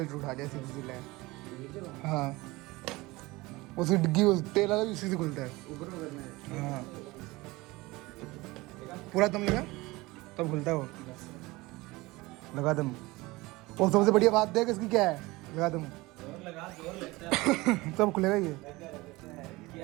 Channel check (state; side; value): quieter; left; 21.5 dB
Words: उठा जाए सीधी लाए। हाँ उसकी डिग्गी तेल वाला भी उसी से खुलता है। हाँ पूरा दम लगा तब खुलता है वो, लगा दम। और सबसे बढ़िया बात देख इसकी क्या है, लगा दम तब खुलेगा ये